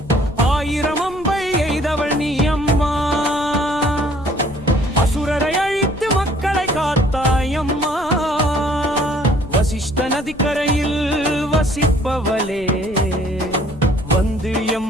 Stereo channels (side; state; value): left; noise; rumble, 18 dB below the sound